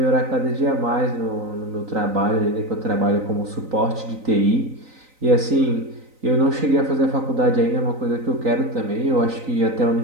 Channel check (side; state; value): left; late; 3.9 ms